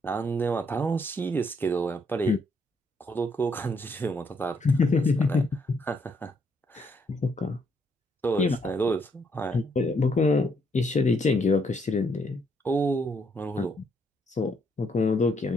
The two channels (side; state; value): both; normal; correlation 0.72